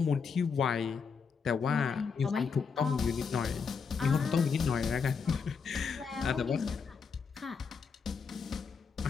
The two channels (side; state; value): right; quieter; 5.7 dB